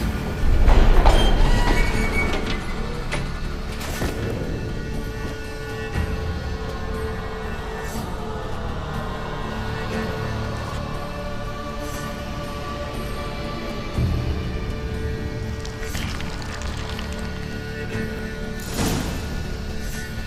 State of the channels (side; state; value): both; identical; correlation 1.00